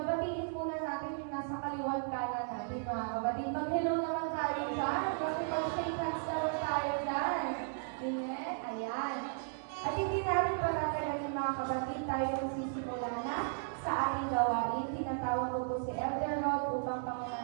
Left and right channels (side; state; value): left; silent; digital silence